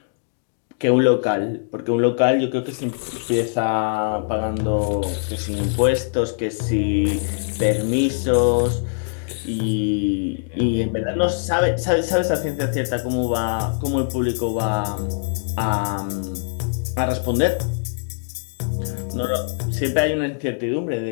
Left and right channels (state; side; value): silent; right; digital silence